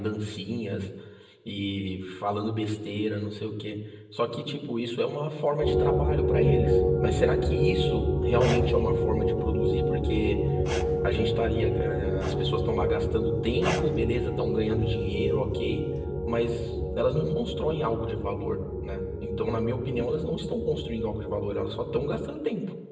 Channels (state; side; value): identical; both; correlation 1.00